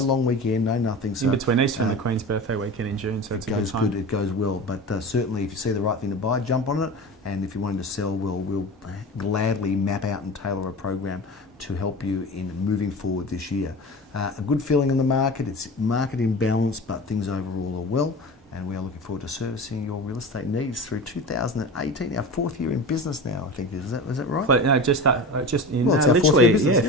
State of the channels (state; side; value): normal; both; correlation 0.32